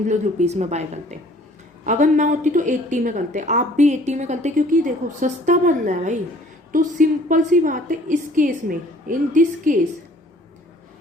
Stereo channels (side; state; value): both; normal; correlation 0.55